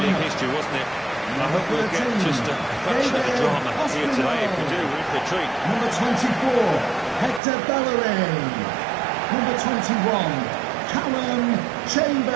history, wasn't it? I hope we'll get just a fraction of the drama here today. If we do, we're in for a treat. Number 24, Hector Bellerin. Number 21, Callum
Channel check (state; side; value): drops out; left; at 7.4 s